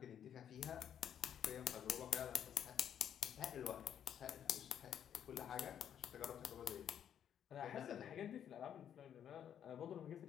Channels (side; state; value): right; quieter; 9.3 dB